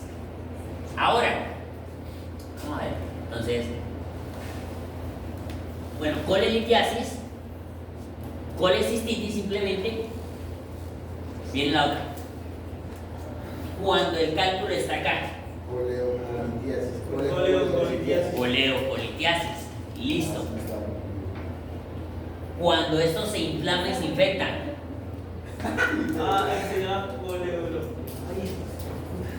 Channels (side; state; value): both; identical; correlation 1.00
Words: Ahora, vamos a ver. Entonces, bueno, colelitiasis, colecistitis simplemente viene la otra. Cuando el cálculo está acá. Coleocolitiasis. Listo. Cuando esto se inflama y se infecta. Se llama